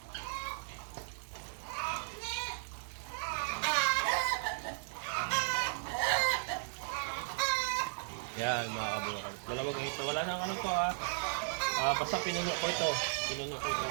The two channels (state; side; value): silent; left; digital silence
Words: Yan mga kabokals. 2 ganito. Wala nang ano to ha. Basta pinuno ko ito. Ano.